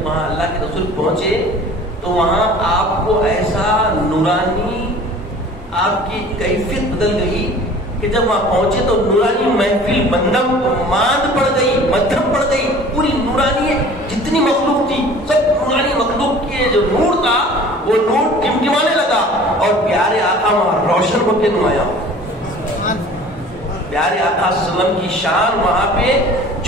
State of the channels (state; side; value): normal; both; correlation 0.46